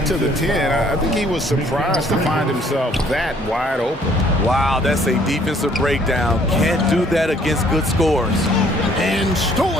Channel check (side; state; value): both; normal; correlation 0.61